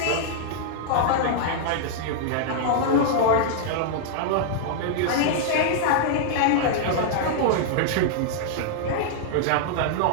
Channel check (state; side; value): different; both; correlation -0.01